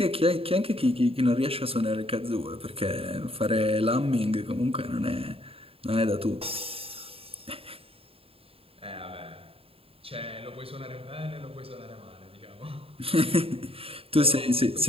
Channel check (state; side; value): late; left; 0.27 ms